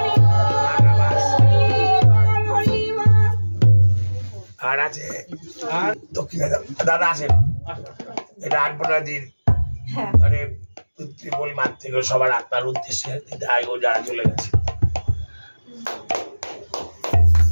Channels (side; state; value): both; inverted; correlation -1.00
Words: আর আছে আর দক্ষিণা দাদা আসেন, এটা আলপনা দিন মানে পিতৃবল মাঠ থেকে সবার আত্মার উদ্দেশ্যে ও যারা চলে গেছে।